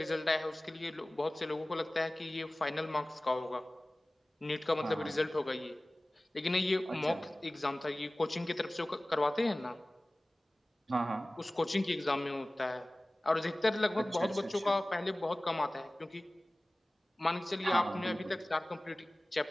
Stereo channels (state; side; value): normal; both; correlation 0.98